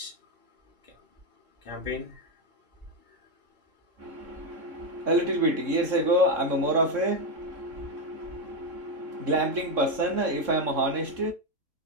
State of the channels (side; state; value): left; late; 3.7 ms